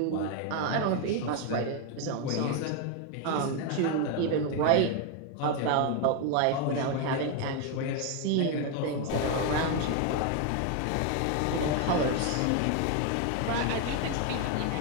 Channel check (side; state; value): both; different; correlation 0.01